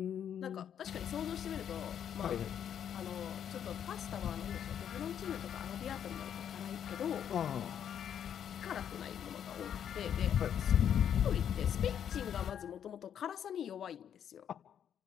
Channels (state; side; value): quieter; right; 9.1 dB